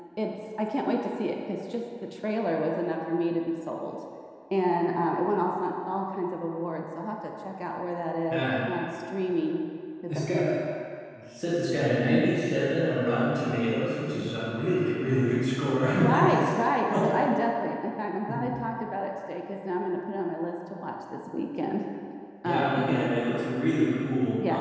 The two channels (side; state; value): both; identical; correlation 1.00